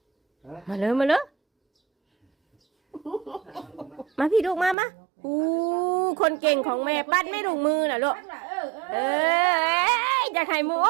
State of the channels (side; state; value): left; drops out; at 4.8 s